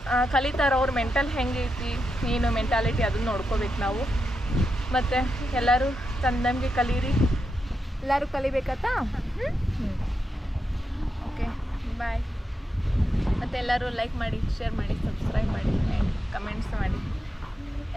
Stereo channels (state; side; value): normal; both; correlation 0.86